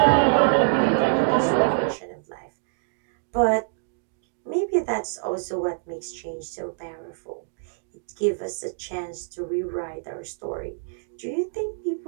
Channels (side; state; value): left; silent; digital silence